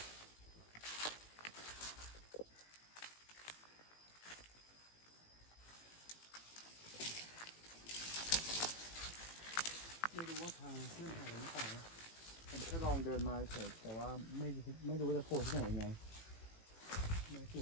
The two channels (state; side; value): late; right; 18 ms